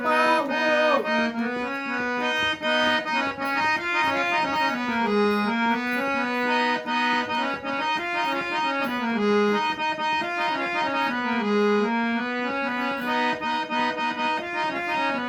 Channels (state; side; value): identical; both; correlation 1.00